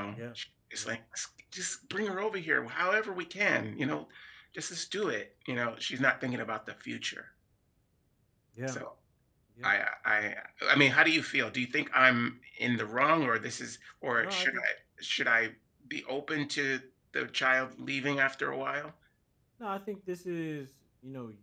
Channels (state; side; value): identical; both; correlation 1.00